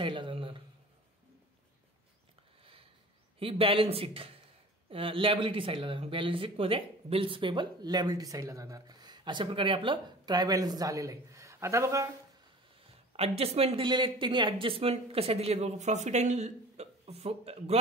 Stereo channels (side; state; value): both; normal; correlation 0.42